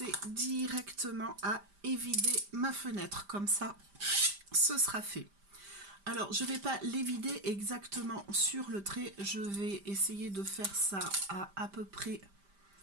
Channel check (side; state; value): left; late; 5.0 ms